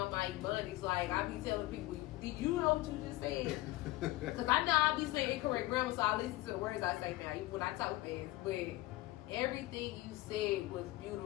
my ebonics. Like, I be telling people, did you know what you just said? Because I know I be saying incorrect grammar, so I listen to the words I say now, even when I talk fast. But everything you said was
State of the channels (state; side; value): quieter; right; 18.3 dB